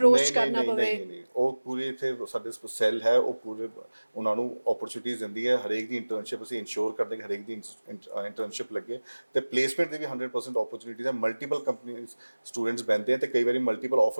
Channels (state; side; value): inverted; both; correlation -1.00